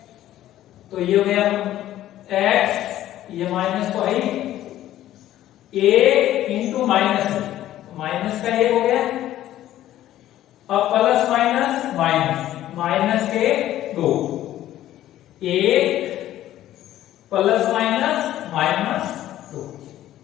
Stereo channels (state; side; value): quieter; right; 13.3 dB